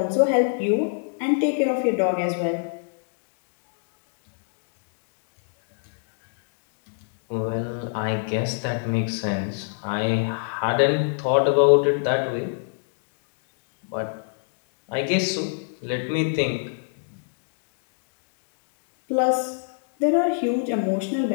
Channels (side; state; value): right; silent; digital silence